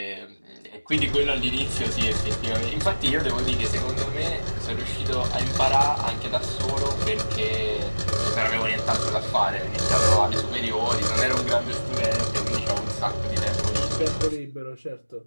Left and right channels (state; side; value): inverted; both; correlation -1.00